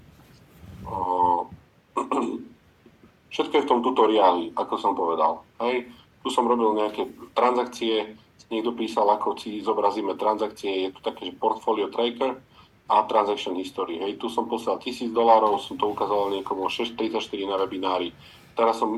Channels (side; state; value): both; identical; correlation 1.00